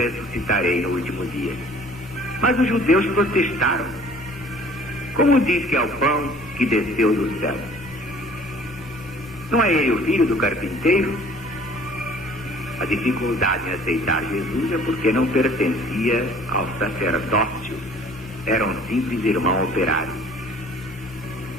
no último dia. Mas os judeus protestaram. Como diz que é o pão que desceu do céu? Não é ele o filho do carpinteiro? A dificuldade em aceitar Jesus é porque não pertencia ao sacerdócio. Era um simples irmão operário.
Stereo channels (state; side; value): normal; both; correlation 0.52